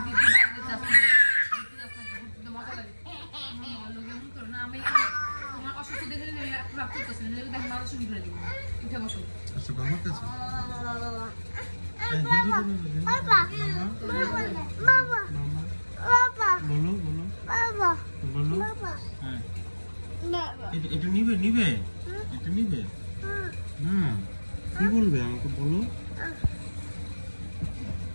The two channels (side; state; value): both; inverted; correlation -1.00